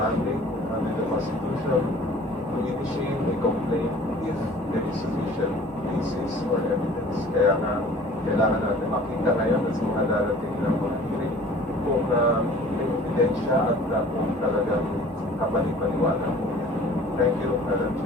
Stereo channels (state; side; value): normal; both; correlation 0.48